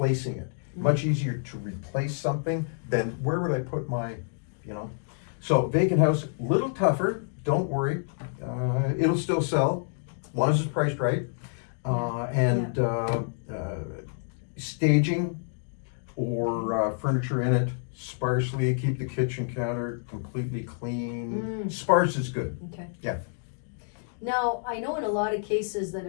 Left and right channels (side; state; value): right; silent; digital silence